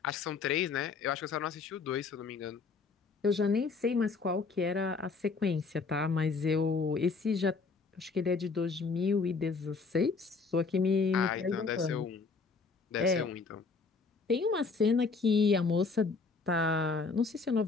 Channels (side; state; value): right; quieter; 4.5 dB